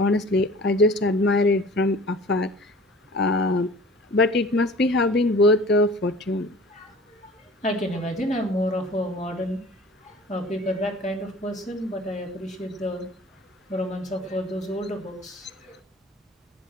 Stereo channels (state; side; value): normal; both; correlation 0.45